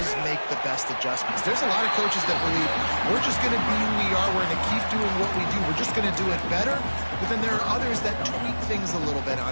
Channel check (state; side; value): inverted; both; correlation -1.00